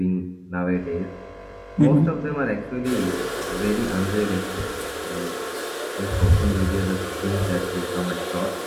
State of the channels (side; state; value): both; identical; correlation 1.00